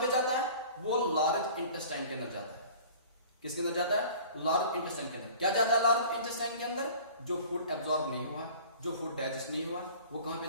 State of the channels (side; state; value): both; inverted; correlation -0.45